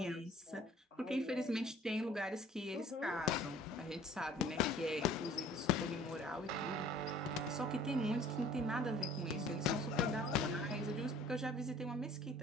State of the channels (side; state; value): both; normal; correlation 0.51